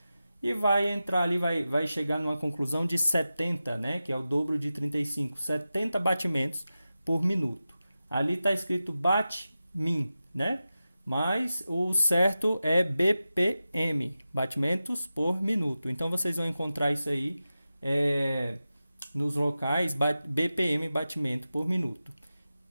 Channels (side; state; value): both; inverted; correlation -0.93